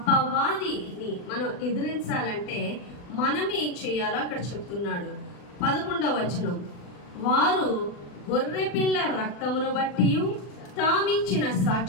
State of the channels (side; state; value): right; late; 40 ms